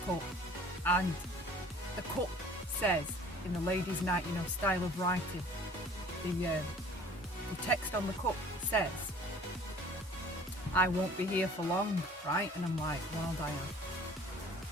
cup, and the cup says, in the ladies' night, style of writing, the text on the cup says, I won't be here for long, right? And I'm like, well, Diane,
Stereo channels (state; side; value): normal; both; correlation 0.49